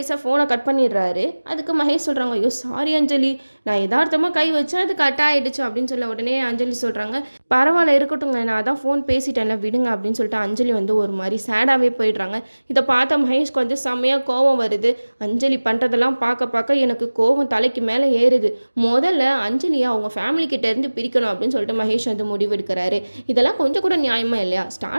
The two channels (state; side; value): inverted; both; correlation -1.00